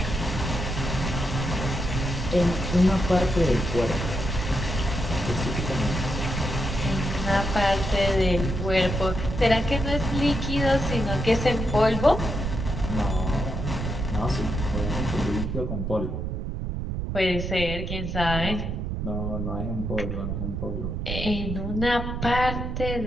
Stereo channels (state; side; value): noise; right; rumble, 3 dB below the sound